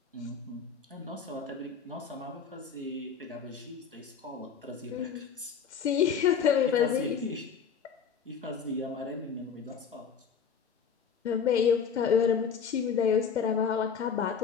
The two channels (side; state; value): right; quieter; 6.7 dB